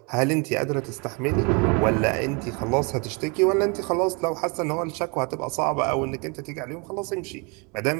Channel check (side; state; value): left; quieter; 31.2 dB